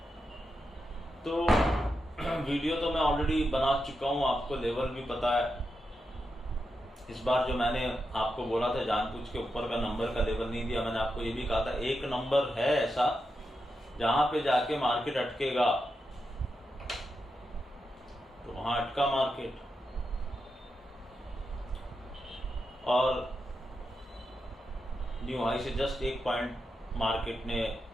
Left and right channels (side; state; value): both; normal; correlation 0.87